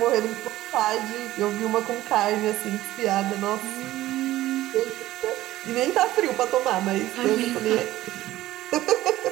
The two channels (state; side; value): quieter; left; 15.4 dB